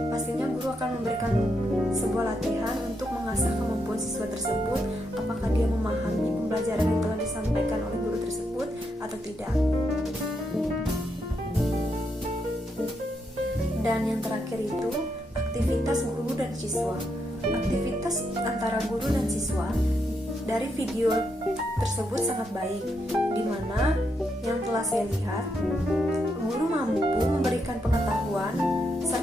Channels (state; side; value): normal; both; correlation 0.80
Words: pastinya guru akan memberikan sebuah latihan untuk mengasah kemampuan siswa tersebut, apakah dia memahami pembelajaran yang telah disampaikan oleh guru tersebut atau tidak. Dan yang terakhir itu aktivitas guru dan siswa. Aktivitas antara guru dan siswa dari video tersebut sangat baik, di mana yang telah saya lihat, guru mampu memberikan pengetahuan